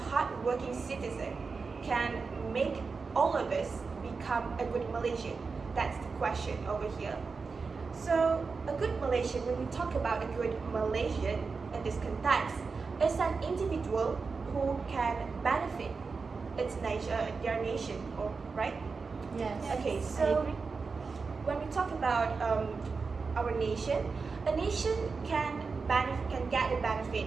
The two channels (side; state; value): left; quieter; 4.7 dB